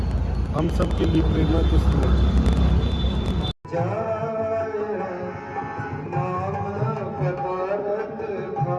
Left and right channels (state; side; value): identical; both; correlation 1.00